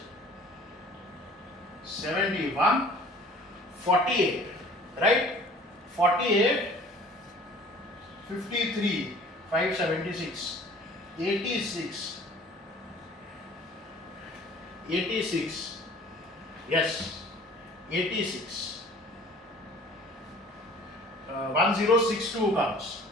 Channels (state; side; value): normal; both; correlation 0.49